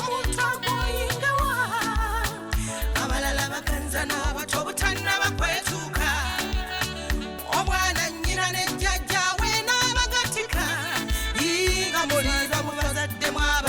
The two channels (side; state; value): both; identical; correlation 1.00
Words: agwoyingewa abalala baganza n'abato butannaba kwetuuka